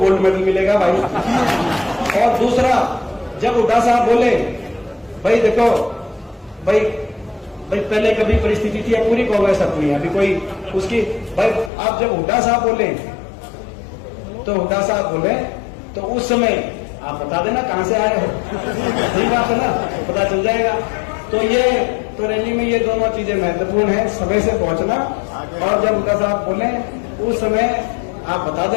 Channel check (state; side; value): drops out; right; at 11.7 s